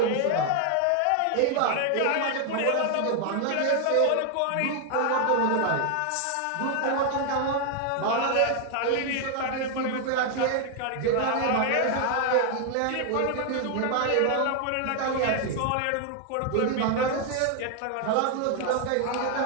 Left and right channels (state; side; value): different; both; correlation 0.00